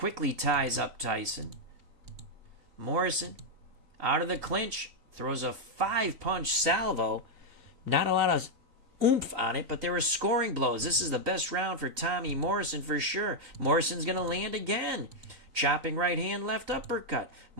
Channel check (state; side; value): late; left; 3.9 ms